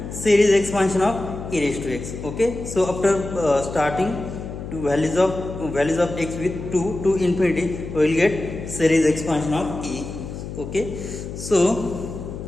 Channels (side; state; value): left; noise; hum, 9 dB below the sound